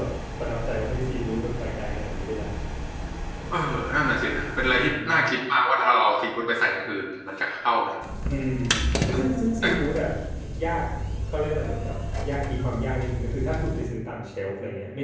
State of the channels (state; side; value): identical; both; correlation 1.00